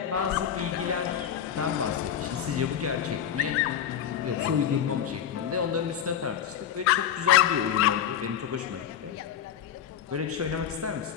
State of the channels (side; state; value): right; quieter; 9.5 dB